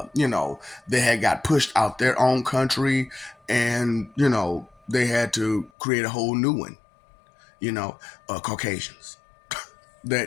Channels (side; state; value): right; drops out; at 5.7 s